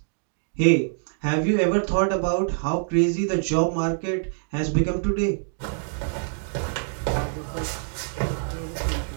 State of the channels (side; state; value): left; silent; digital silence